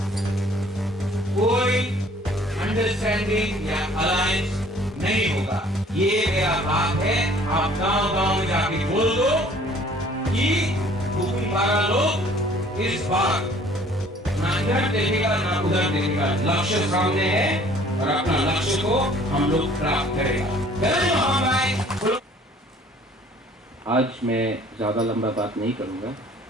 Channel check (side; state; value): both; normal; correlation 0.55